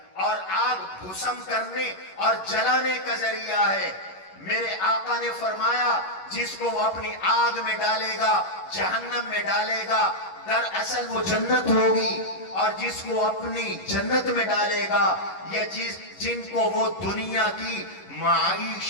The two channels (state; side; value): late; right; 11 ms